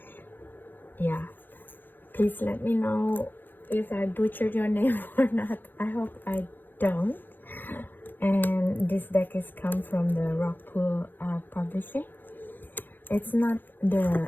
Yeah, please let me know if I butchered your name or not. I hope I don't. And this deck is come from the Rockpool Publishing. It's not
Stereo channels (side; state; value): right; late; 0.091 ms